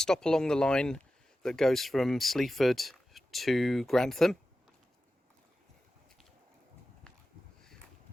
along the line that goes from Sleaford to Grantham.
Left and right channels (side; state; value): both; normal; correlation 0.93